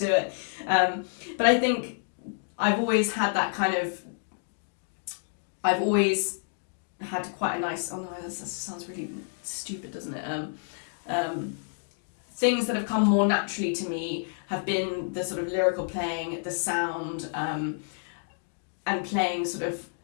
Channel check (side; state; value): right; silent; digital silence